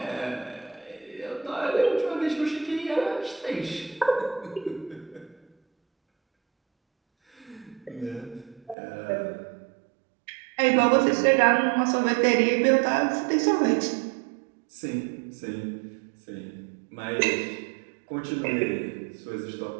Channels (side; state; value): left; drops out; at 8.8 s